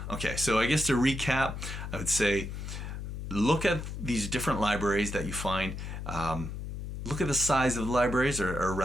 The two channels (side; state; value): left; noise; hum, 7 dB below the sound